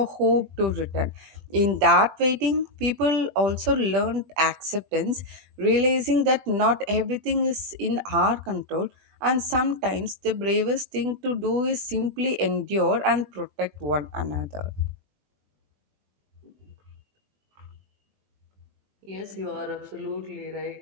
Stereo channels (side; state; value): left; late; 20 ms